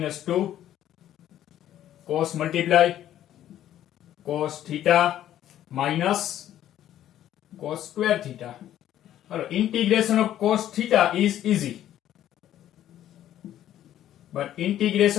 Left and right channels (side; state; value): right; quieter; 11.9 dB